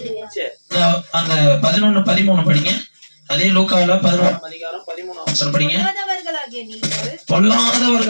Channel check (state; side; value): inverted; both; correlation -1.00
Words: அந்த 11-13 படிங்க. அதே லூக்கால 11ஆம் அதிகாரம் 13ஆம் வசனம் படிங்க.